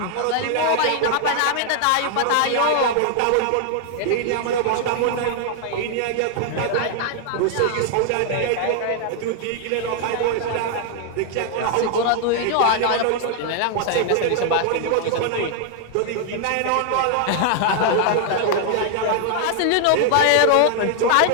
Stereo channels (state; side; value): different; both; correlation 0.00